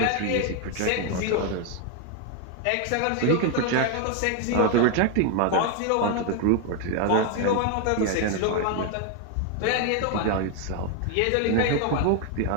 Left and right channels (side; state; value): both; different; correlation 0.01